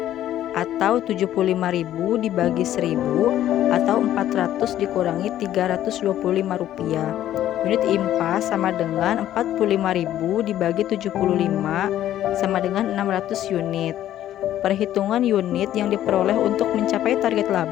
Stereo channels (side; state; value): right; quieter; 12.3 dB